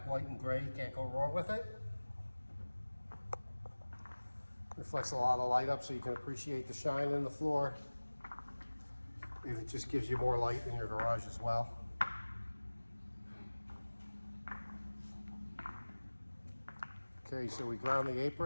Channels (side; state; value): both; inverted; correlation -1.00